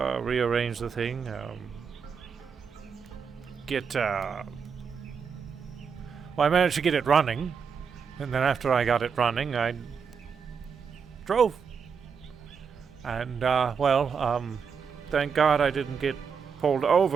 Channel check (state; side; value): quieter; left; 6.3 dB